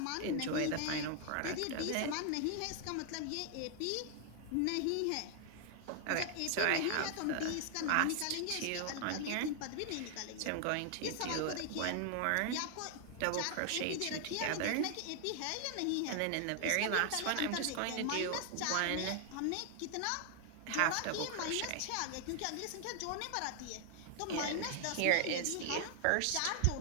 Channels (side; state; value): both; different; correlation 0.00